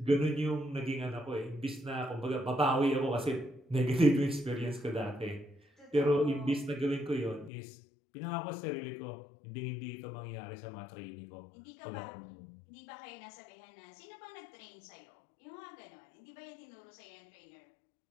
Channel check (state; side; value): drops out; right; at 7.5 s